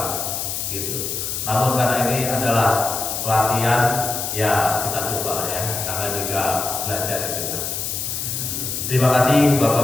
Gitu. Namun karena ini adalah pelatihan, ya kita coba ya. Namanya juga belajar itu. Terima kasih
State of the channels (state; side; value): noise; left; hiss, 3 dB below the sound